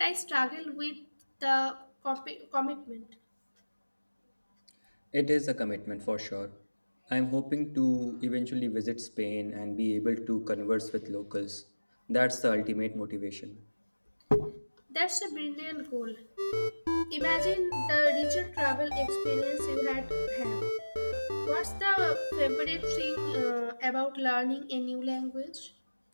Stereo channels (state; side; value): inverted; both; correlation -1.00